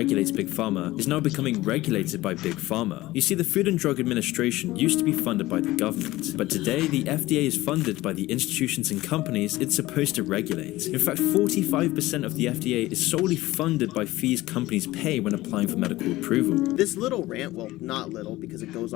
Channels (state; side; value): quieter; right; 17.8 dB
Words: Big Pharma, is now becoming regulated by Big Pharma. You see, the Food and Drug Administration used to be funded by the government, but today the FDA is funded by the institutions and companies it's supposed to regulate. In fact, 45% of the FDA is solely funded by fees companies pay when applying for medical approval. This little rant, well, not little because it goes